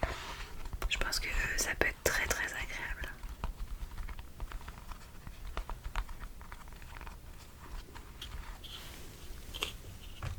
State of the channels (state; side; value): identical; both; correlation 1.00